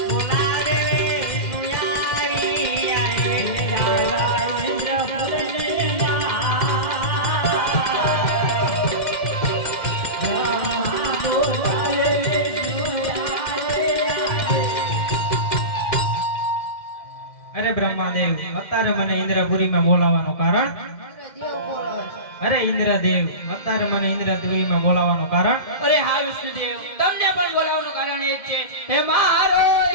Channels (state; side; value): late; right; 2.1 ms